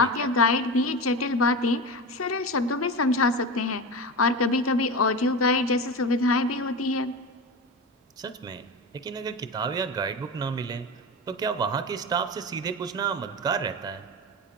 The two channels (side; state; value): both; normal; correlation 0.25